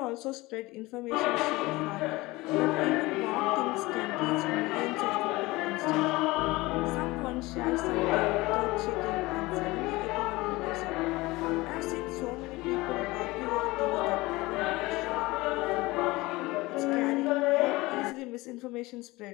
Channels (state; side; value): quieter; right; 21.1 dB